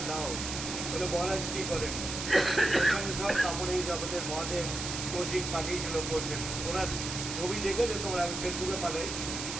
দাও, বলে মহারাজ কী করেন? এখানে সব কাপড় এই আমাদের মহাদেব কৌশিক পাঠিয়েছিল করছেন, ওরা ছবি দেখেছো তোমরা, আমি ফেসবুকে পাঠাই,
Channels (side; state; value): right; noise; hiss, 5 dB below the sound